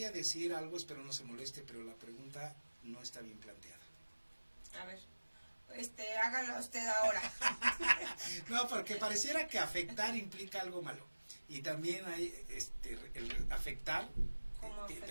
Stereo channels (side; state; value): both; inverted; correlation -1.00